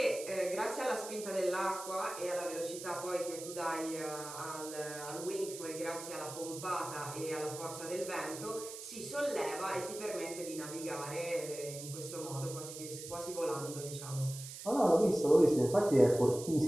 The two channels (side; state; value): right; noise; hiss, 11 dB below the sound